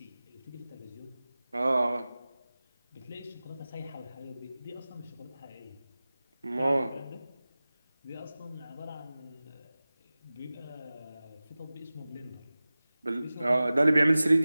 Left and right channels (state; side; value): inverted; both; correlation -0.97